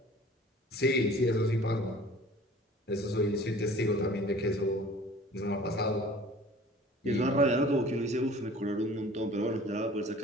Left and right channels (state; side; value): normal; both; correlation 0.47